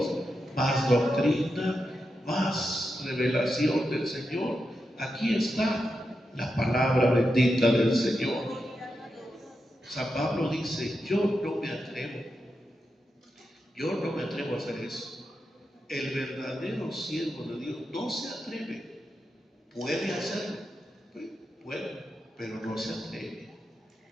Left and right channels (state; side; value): normal; both; correlation 0.87